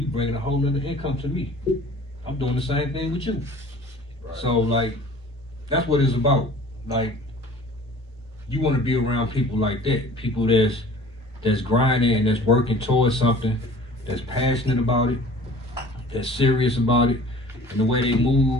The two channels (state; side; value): normal; both; correlation 0.46